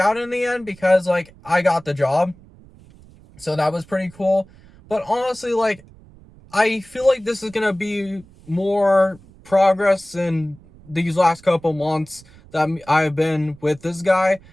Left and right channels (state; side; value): noise; right; rumble, 25 dB below the sound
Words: in the end, because like I got the job. So that was pretty cool. But honestly, like, I feel like this is going to be more progress in these last couple months that I've been with this guy.